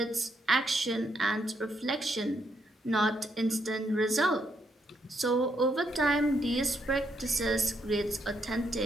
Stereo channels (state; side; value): normal; both; correlation 0.77